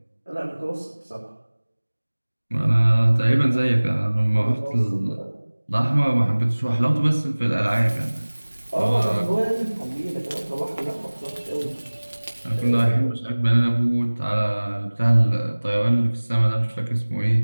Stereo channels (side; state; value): both; inverted; correlation -1.00